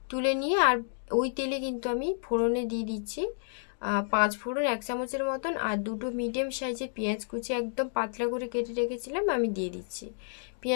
তুলে নিয়ে আর ওই তেলে কিন্তু আমি ফোড়নে দিয়ে দিচ্ছি 5 ফোড়ন 1 চামচের মতন, আর 2টো মিডিয়াম সাইজের পেঁয়াজ কুচি একদম পাতলা করে কেটে রেখেছিলাম আমি দিয়ে দিচ্ছি।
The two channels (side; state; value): right; silent; digital silence